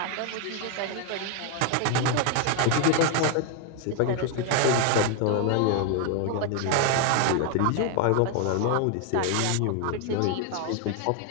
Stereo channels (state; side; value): different; both; correlation 0.00